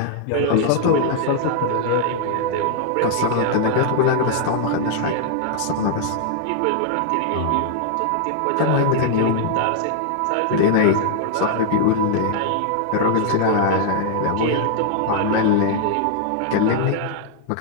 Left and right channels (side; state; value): both; different; correlation 0.00